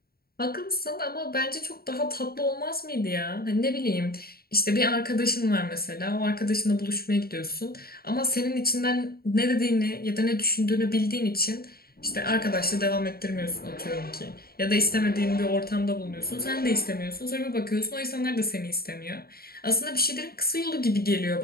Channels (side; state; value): right; late; 0.44 ms